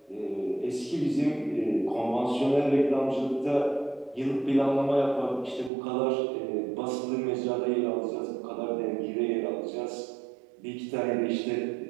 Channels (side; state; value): left; drops out; at 5.7 s